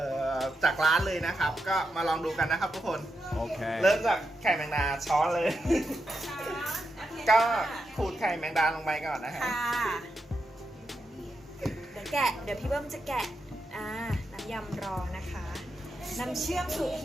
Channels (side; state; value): both; normal; correlation 0.86